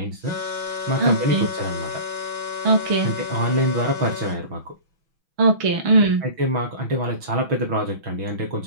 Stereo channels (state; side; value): late; left; 6.2 ms